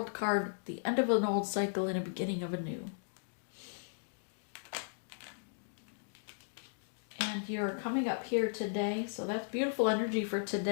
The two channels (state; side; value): silent; right; digital silence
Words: card, the end of an old cycle and a beginning of a new. And you're coming up here today, so that's beautiful energy for